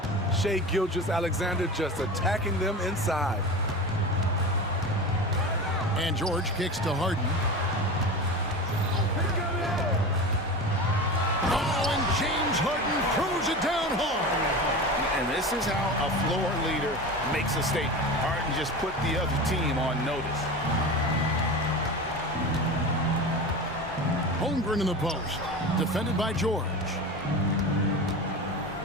Shai Gilgeous-Alexander just attacking them inside. And George kicks to Harden. Oh, and James Harden throws it down hard. And this is how a floor leader makes a statement. Harden just put the other team on notice. Holmgren in the post. Defended by George.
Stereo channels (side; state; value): both; normal; correlation 0.29